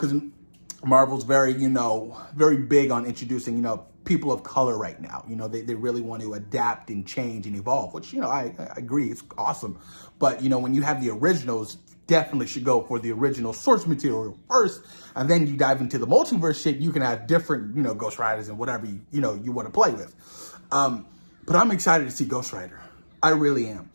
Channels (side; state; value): both; inverted; correlation -1.00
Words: Marvel's very, very big on introducing, people of color right now. They really want to adapt and change and evolve, which, I agree, it's awesome. But, when you have the originals, definitely should go for the original source material first, and then you dive into the multiverse shit. You can have different, Ghost Riders and whatever you want to play with. But I'm excited to see Ghost Rider. I really am.